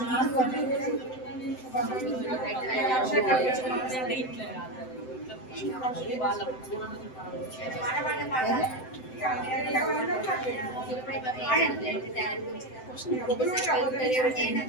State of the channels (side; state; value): right; late; 7.8 ms